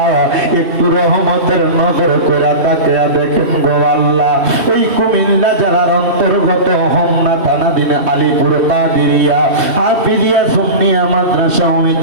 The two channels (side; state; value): left; late; 2.7 ms